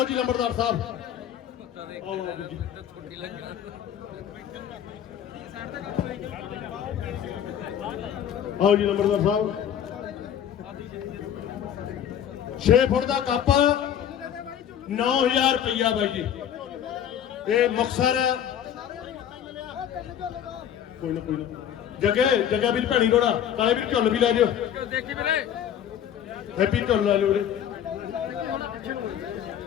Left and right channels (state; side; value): quieter; right; 9.7 dB